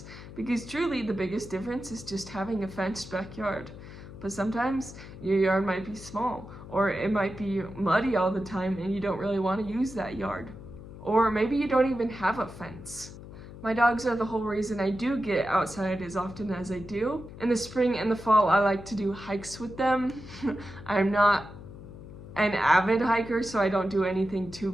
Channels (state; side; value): noise; left; hum, 14 dB below the sound